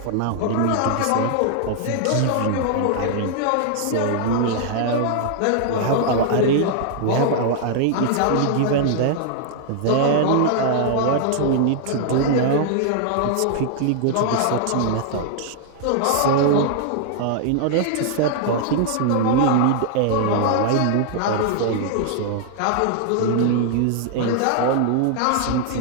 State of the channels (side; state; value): both; different; correlation 0.00